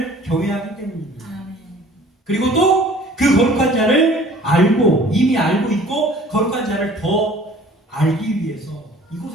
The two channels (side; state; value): both; normal; correlation 0.51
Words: 경외하기 때문입니다. 아멘. 그리고 또 그 거룩한 자를 알고, 이미 알고 있고 거룩한 자를 더 알기 위해서